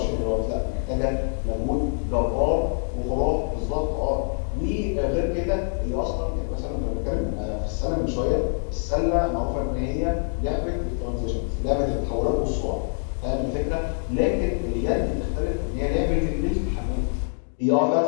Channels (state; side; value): silent; right; 58 dB below the other